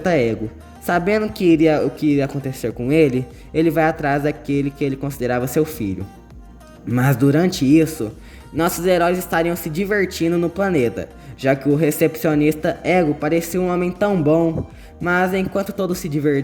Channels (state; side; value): identical; both; correlation 1.00